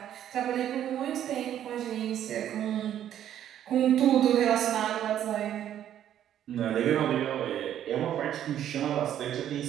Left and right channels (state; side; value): quieter; left; 10.8 dB